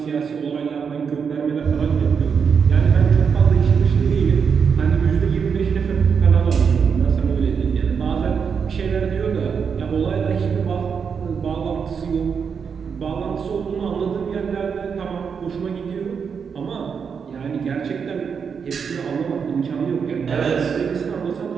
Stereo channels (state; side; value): quieter; left; 6.4 dB